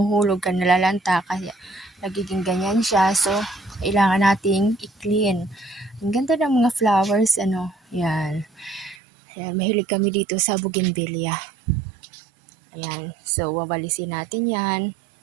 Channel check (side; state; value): left; drops out; at 9.0 s